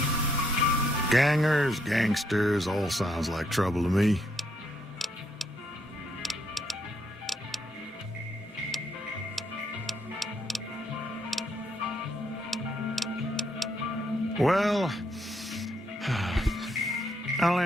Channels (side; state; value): both; normal; correlation 0.74